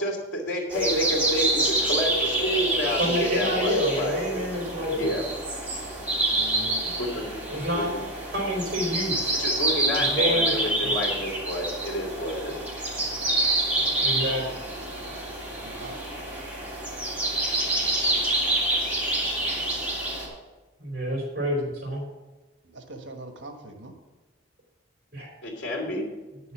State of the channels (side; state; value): both; normal; correlation 0.06